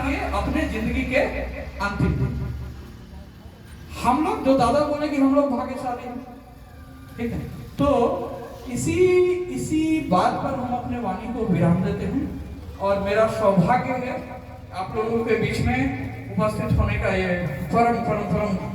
अपने जिंदगी के अंतिम दिन। हम लोग जो दादा बोले कि हम लोग भाग्यशाली हैं, ठीक है, तो इसी बात पर हम अपने वाणी को विराम देते हैं। और मेरा सौभाग्य है आप लोगों के बीच में उपस्थित होने का ये परम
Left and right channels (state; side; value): identical; both; correlation 1.00